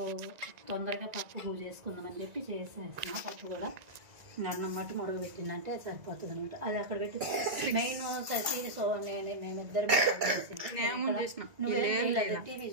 తొందరగా పప్పు చేసుకుందామని చెప్పి చేసేసిన. పప్పు కూడా అన్నం మట్టి ముడుగు పెట్టిందంటే సరిపోతుంది అనమాట. అది అక్కడ పెట్టి మెయిన్ ససి మేమిద్దరం టీవీ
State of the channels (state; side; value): late; left; 1.9 ms